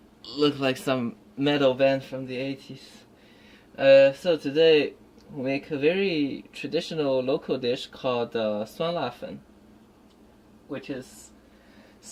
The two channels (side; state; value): both; identical; correlation 1.00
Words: Look like some metal band from the 80s. So today we make a very traditional local dish called 酸辣粉, which is